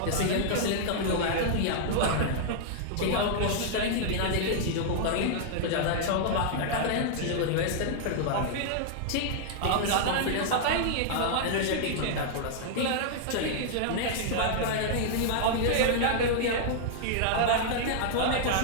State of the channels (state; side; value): different; both; correlation -0.01